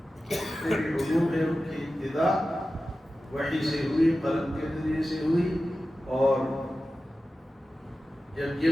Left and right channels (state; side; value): normal; both; correlation 0.94